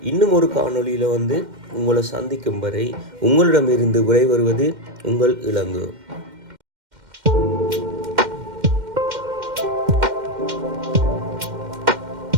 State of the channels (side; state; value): left; late; 2.1 ms